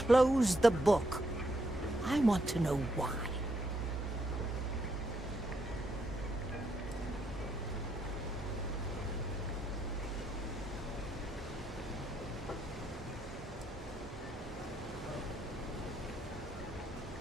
the book. I want to know why.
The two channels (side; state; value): both; normal; correlation 0.77